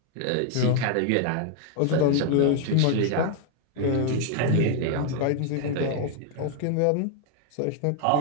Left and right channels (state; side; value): different; both; correlation 0.00